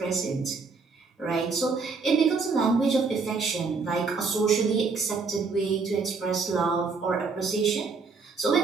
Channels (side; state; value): left; quieter; 4.6 dB